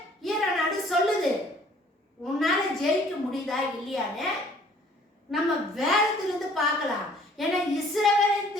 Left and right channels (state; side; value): normal; both; correlation 0.56